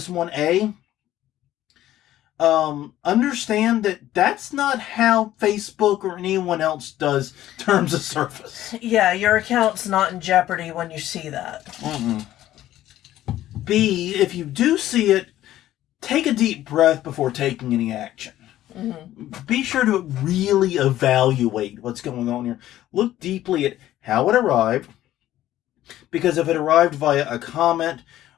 one. Understand that that's not how Facebook or anyone else does terms of service. Yeah, your account's not in jeopardy when you see that. Mm-mm. B, if you do see it, take a deep breath before taking any action. Mm-hmm. Be sure to really evaluate what's going on here. Look deeply at how it arrived. Because if it arrived via a comment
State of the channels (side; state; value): right; quieter; 13.6 dB